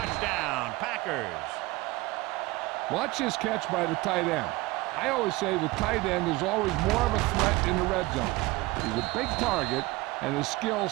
Packers. Watch his catch by the tight end. I always say the tight end is always more of a threat in the red zone. He's a big target, and his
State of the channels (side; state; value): left; quieter; 21.3 dB